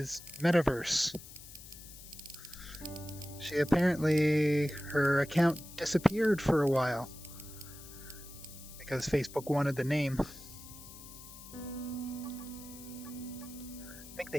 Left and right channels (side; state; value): left; noise; hiss, 16 dB below the sound